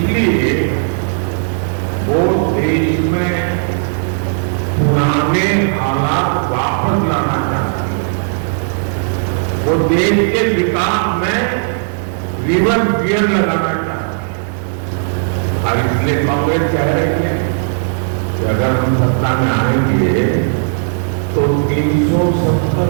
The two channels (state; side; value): silent; left; digital silence